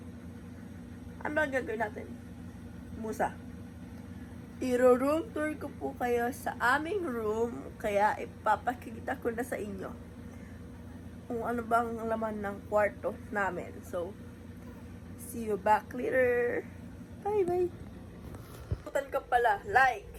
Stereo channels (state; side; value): identical; both; correlation 1.00